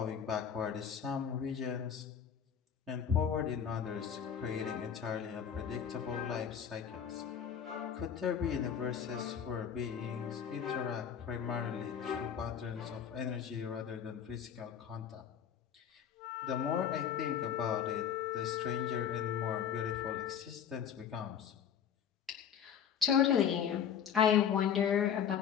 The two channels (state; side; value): quieter; right; 8.2 dB